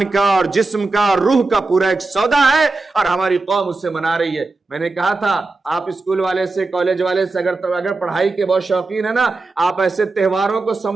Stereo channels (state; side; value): quieter; left; 3.5 dB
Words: کا اور جسم کا اور روح کا پورا ایک سودا ہے، اور ہماری قوم اس سے منا رہی ہے۔ میں نے کہا تھا آپ اسکول والے سے، کالج والے سے اگر پڑھائی کے بہت شوقین ہے نا، آپ ایسے تہواروں کو